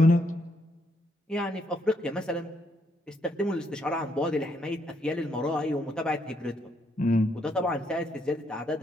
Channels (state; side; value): normal; both; correlation 0.74